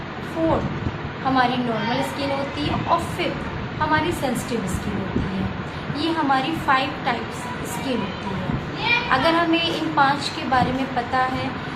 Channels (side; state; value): both; identical; correlation 1.00